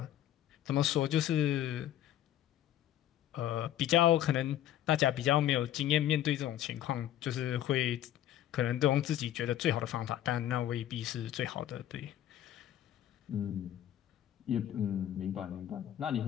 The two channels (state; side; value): quieter; right; 11.9 dB